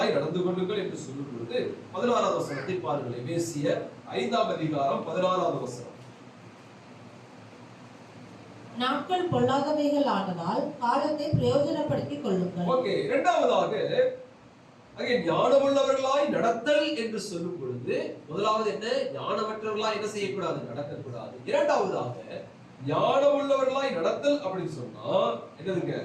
நடந்து கொள்ளுங்கள் என்று சொல்லும் பொழுது 16வது வசனத்தை பாருங்கள். எபேசியர் 5ஆம் அதிகாரம் 16வது வசனம். நாட்கள் பொல்லாதவைகள் ஆனதால் காலத்தை பிரயோஜனப்படுத்திக் கொள்ளுங்கள். ஓகே, இரண்டாவதாக அங்கே ஞானமுள்ளவர்களாய் நடத்தல் என்று சொல்லும் பொழுது, முதலாவது என்ன? ஞானமற்றவர்களாய் என்ன செய்யக்கூடாது? நடக்கக்கூடாது. இரண்டாவதாக ஞானமுள்ளவர்களாய் நடத்தல் அப்படின்னு சொன்னா என்னதுங்க?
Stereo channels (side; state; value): both; identical; correlation 1.00